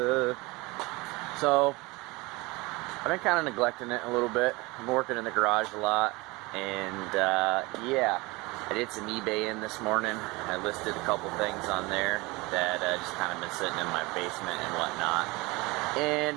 So I've been kind of neglecting it a little bit. I'm working in the garage a lot, and yeah, I did some eBay in this morning. I listed a couple things on there that just kind of been sitting in my basement and whatnot. And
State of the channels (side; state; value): left; quieter; 23.6 dB